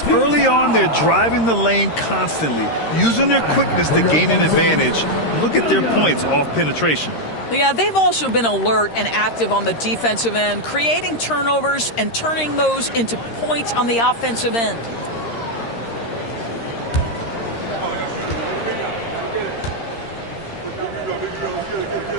early on, they're driving the lane constantly, using their quickness to gain an advantage. Look at their points off penetration. Yeah, they've also been alert and active on the defensive end, creating turnovers and turning those into points on the offensive end.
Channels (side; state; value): right; late; 13 ms